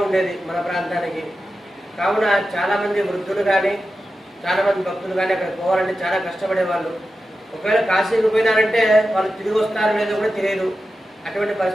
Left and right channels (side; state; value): both; normal; correlation 0.92